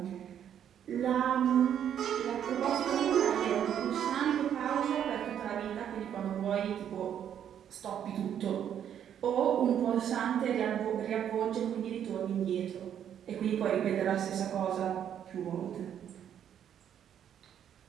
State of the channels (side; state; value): left; quieter; 9.4 dB